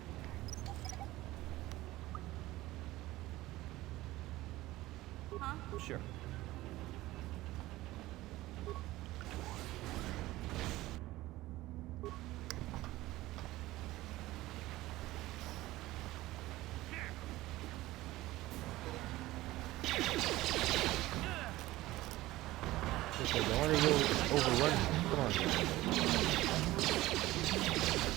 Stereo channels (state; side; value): quieter; left; 17.5 dB